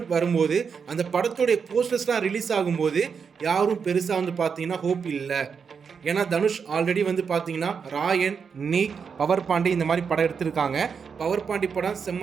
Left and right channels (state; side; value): quieter; left; 6.1 dB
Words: வரும்போது, அந்த படத்தோடைய போஸ்டர்ஸ்லாம் ரிலீஸ் ஆகும்போது யாரும் பெருசா வந்து பார்த்தீங்கன்னா ஹோப் இல்லை. ஏன்னா தனுஷ் ஆல்ரெடி வந்து பார்த்தீங்கன்னா ராயன், நீக், பவர் பாண்டி இந்த மாதிரி படம் எடுத்திருக்காங்க. பவர் பாண்டி படம்